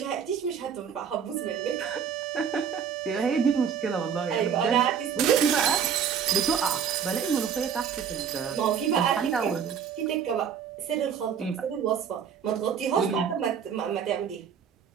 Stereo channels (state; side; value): quieter; left; 7.5 dB